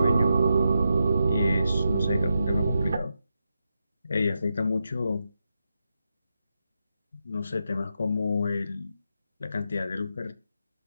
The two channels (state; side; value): inverted; both; correlation -0.86